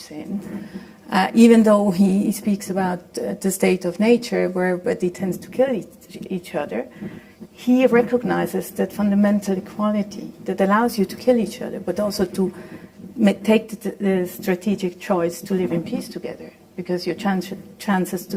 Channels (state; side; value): identical; both; correlation 1.00